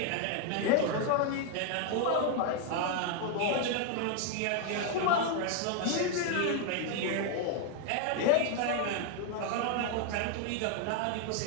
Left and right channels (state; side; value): different; both; correlation 0.00